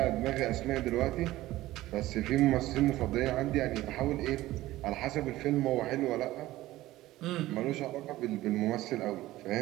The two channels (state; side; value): quieter; left; 16.4 dB